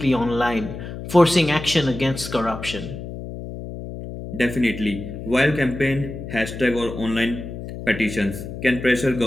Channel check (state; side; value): noise; left; hum, 9 dB below the sound